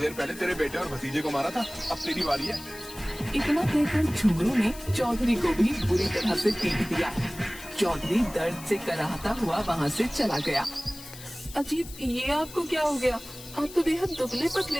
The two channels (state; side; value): noise; left; hiss, 16 dB below the sound